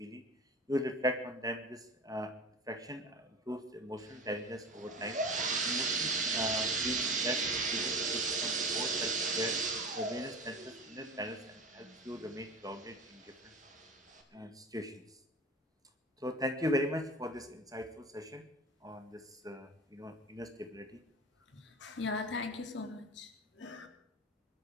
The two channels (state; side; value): normal; both; correlation 0.33